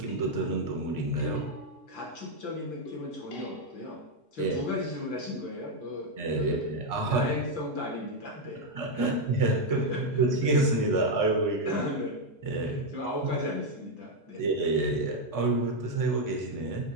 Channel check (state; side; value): late; right; 6.0 ms